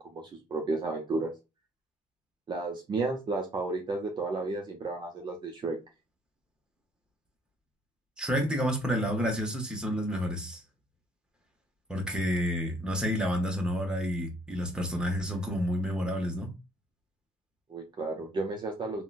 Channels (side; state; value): both; normal; correlation 0.64